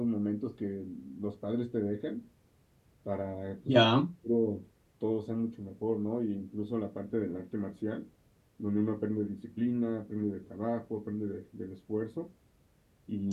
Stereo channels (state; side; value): identical; both; correlation 1.00